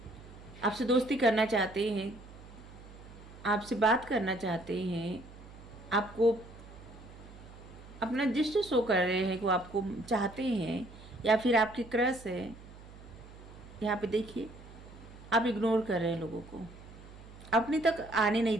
आपसे दोस्ती करना चाहते हैं, आपसे बात करना चाहते हैं, आपको अपना जस्ट शो कर रहे हैं कि वो आपको चाहते हैं, या फिर आपकी क्रश है। यहाँ पे देखिए, आप इग्नोर कर रहे हैं लोगों को, अपने तक आने नहीं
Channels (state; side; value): noise; right; hum, 18 dB below the sound